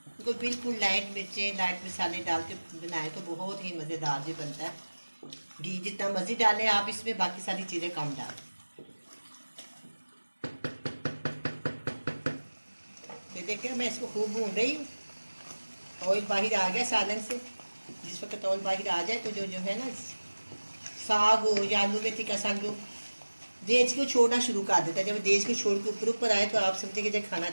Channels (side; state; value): both; inverted; correlation -1.00